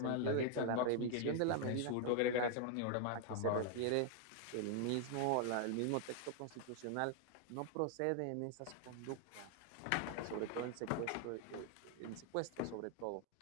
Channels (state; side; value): different; both; correlation 0.00